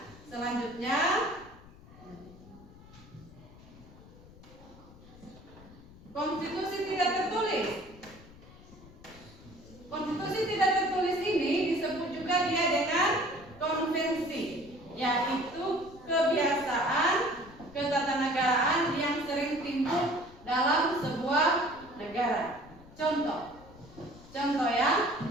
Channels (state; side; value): noise; left; rumble, 20 dB below the sound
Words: selanjutnya konstitusi tidak tertulis. Konstitusi tidak tertulis ini disebut juga dia dengan konvensi, yaitu kebiasaan ketatanegaraan yang sering timbul dalam sebuah negara. Contoh ya,